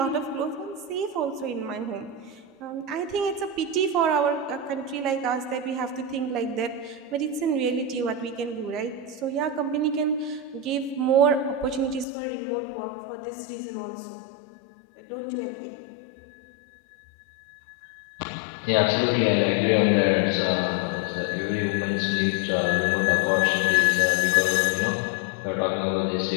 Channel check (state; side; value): drops out; right; at 12.1 s